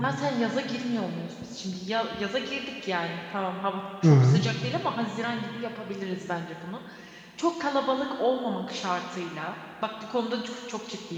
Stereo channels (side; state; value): both; identical; correlation 1.00